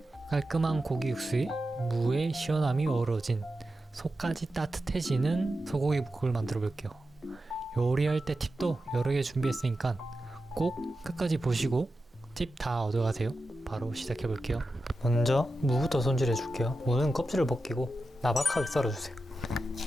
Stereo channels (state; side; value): normal; both; correlation 0.91